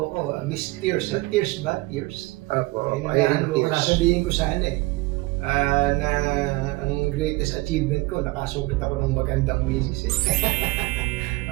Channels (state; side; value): quieter; left; 22.0 dB